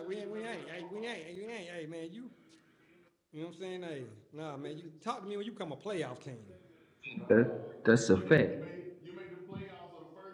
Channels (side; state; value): both; identical; correlation 1.00